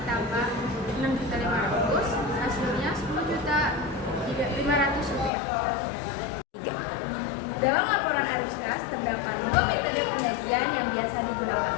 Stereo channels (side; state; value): right; drops out; at 5.3 s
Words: 6.500, hasilnya 10.500 rupiah. Dalam laporan arus kas terdapat dua metode penyajian yang biasa